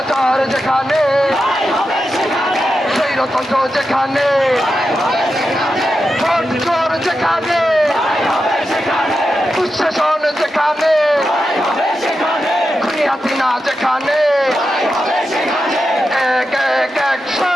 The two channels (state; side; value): normal; both; correlation 0.89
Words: যেখানে স্বৈরতন্ত্র যেখানে ভোট চোর যেখানে দুঃশাসন যেখানে খুনি হাসিনা যেখানে এক এক